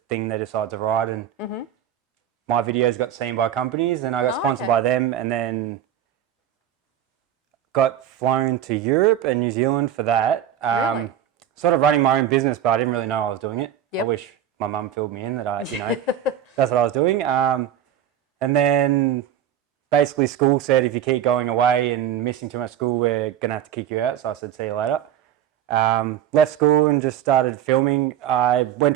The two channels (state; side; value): quieter; left; 10.4 dB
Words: thing they decide to ride, and my videos got seen by companies, and I got sponsored by them, and then got flown to Europe and New Zealand for that. Really? Sort of running my own business, but I didn't really know I was doing it. Yep. I wish my mum filled me in that that's what I was doing. And then basically school said, if you keep going away and missing too much school, we're going to have to kick you out. So I said, see you later. Left school and just started filming. I went